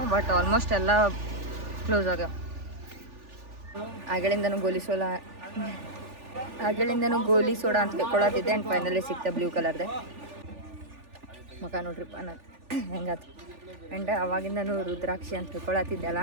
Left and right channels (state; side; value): late; left; 3.4 ms